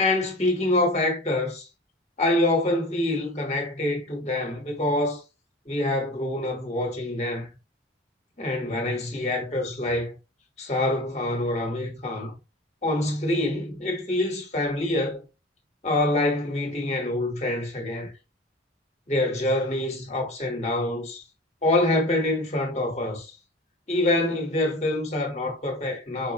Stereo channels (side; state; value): both; normal; correlation 0.36